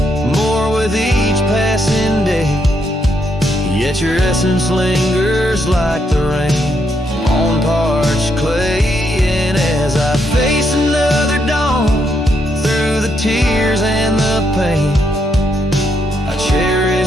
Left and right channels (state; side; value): normal; both; correlation 0.77